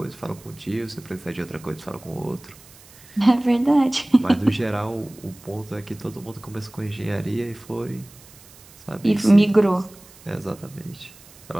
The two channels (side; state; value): right; noise; hiss, 23 dB below the sound